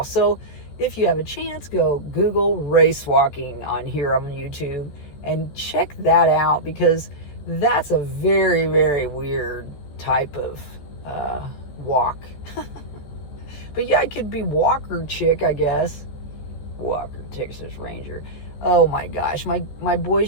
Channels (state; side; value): late; right; 14 ms